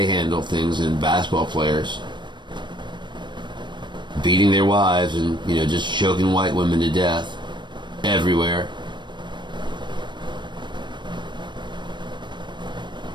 handle things, and basketball players beating their wives and, you know, just choking white women to death everywhere.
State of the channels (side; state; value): left; late; 0.22 ms